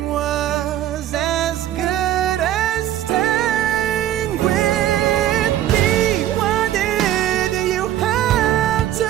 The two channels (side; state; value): left; quieter; 12.4 dB